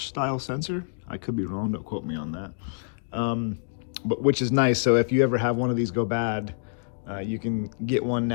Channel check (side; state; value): right; silent; digital silence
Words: style sensor. I could be wrong, don't quote me on that. But which is nice, so if you ever have one of these go bad, you can get one